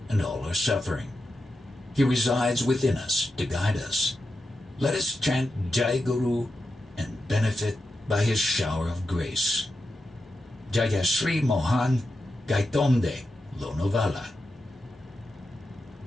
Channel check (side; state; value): both; normal; correlation 0.88